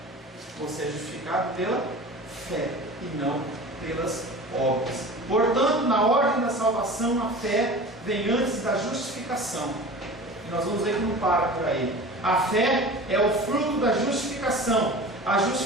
Você é justificado pela fé e não pelas obras. Portanto, na ordem da salvação, a fé vem antes da justificação. E nós vamos ver que não para por aí. A fé é o fruto da justificação. A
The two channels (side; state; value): both; normal; correlation 0.37